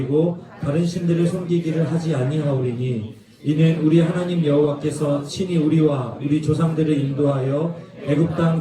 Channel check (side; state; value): both; identical; correlation 1.00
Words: 다른 신들을 섬기기를 하지 아니하오리니 이는 우리 하나님 여호와께서 친히 우리와 우리 조상들을 인도하여 애굽